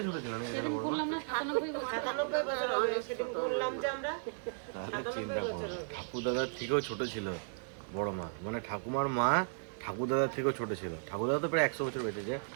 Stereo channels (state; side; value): silent; left; digital silence